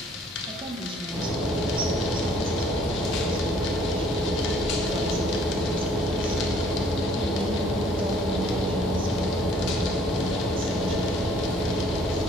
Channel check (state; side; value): normal; both; correlation 0.60